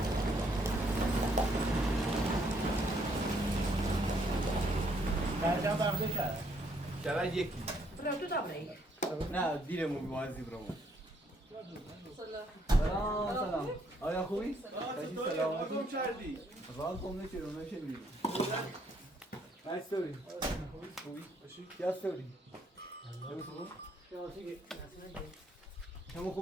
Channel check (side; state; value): both; normal; correlation 0.70